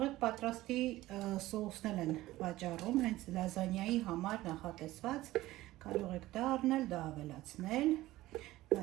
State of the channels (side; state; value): left; quieter; 16.8 dB